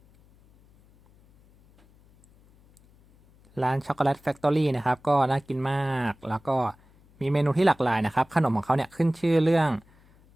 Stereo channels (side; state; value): left; noise; hum, 30 dB below the sound